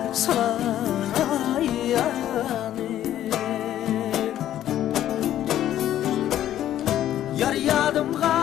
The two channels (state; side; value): quieter; right; 12.0 dB